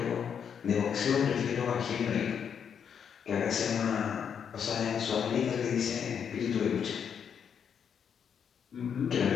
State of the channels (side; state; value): right; quieter; 7.6 dB